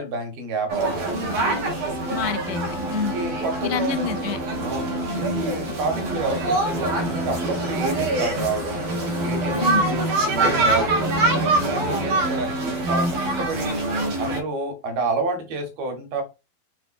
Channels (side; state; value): left; late; 12 ms